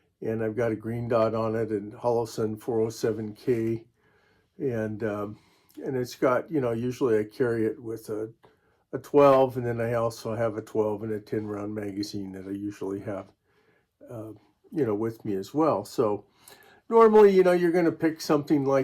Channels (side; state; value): both; identical; correlation 1.00